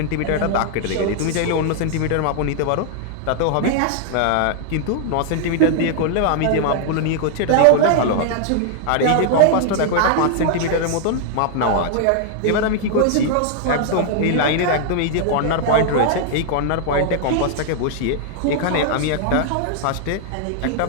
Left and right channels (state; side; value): different; both; correlation -0.01